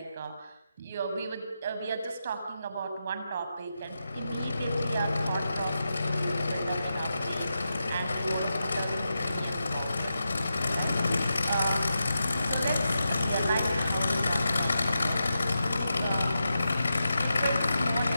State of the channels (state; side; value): inverted; both; correlation -0.88